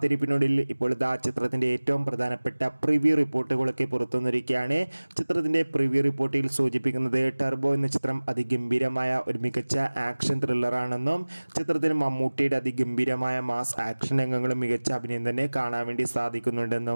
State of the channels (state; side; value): inverted; both; correlation -1.00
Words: ഇപ്പോൾ ചിത്രത്തിൻ്റെ ഏറ്റവും പ്രധാനപ്പെട്ട പ്രിവ്യൂ റിപ്പോർട്ടുകളൊക്കെ പുറത്തുവന്നിരിക്കുകയാണ്. ചിത്രത്തിൻ്റെ പ്രിവ്യൂ റിപ്പോർട്ടിൽ സൂചിപ്പിക്കുന്നത് ടർബോ എന്ന ചിത്രം അതിഗംഭീരമായ ഒരു മികച്ച ആക്ഷൻ ത്രില്ലറാണെന്നും ചിത്രത്തിൽ മമ്മൂട്ടിയുടെ അതിഗംഭീരമായ മാസ് ആക്ഷൻ രംഗങ്ങളും മികച്ച അഭിനയം തന്നെ കാണാൻ വേണ്ടി